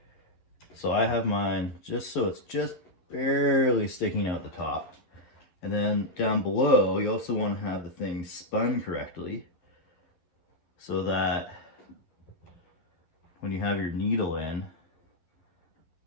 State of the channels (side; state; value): right; late; 11 ms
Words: So I have mine just so it's just barely sticking out the top. And then down below, you also want to have the thing spun correctly so that when you have your needle in,